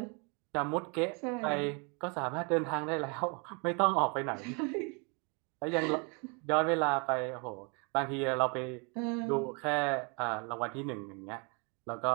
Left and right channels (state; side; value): quieter; left; 33.3 dB